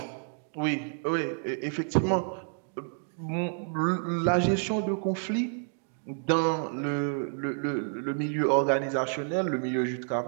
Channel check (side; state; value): left; silent; 57 dB below the other